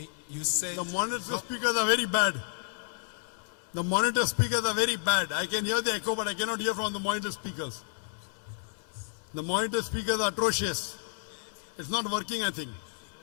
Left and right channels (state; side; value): silent; right; digital silence